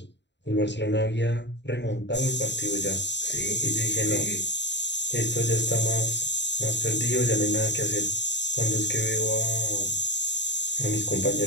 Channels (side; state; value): right; late; 0.51 ms